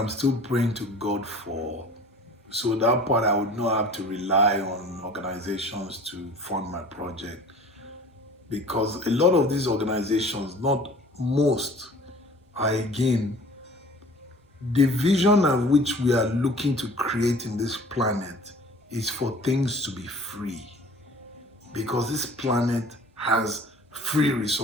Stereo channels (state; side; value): normal; both; correlation 0.46